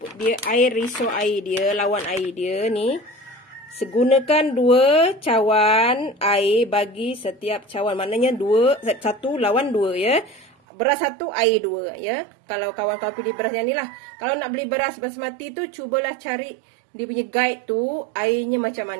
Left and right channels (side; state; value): left; drops out; at 10.5 s